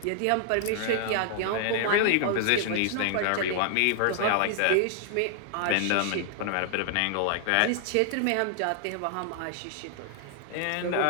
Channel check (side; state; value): both; different; correlation 0.00